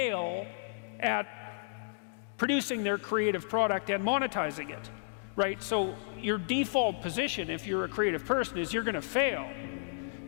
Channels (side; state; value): right; silent; digital silence